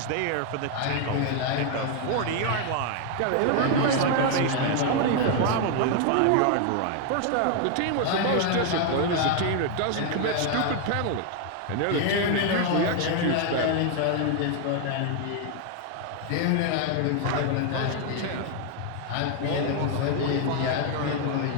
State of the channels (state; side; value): different; both; correlation 0.00